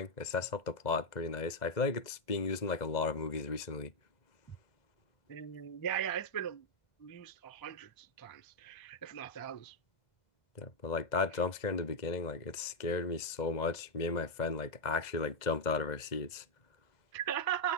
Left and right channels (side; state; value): right; late; 2.0 ms